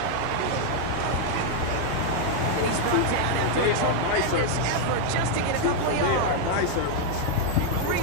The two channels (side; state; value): both; different; correlation 0.00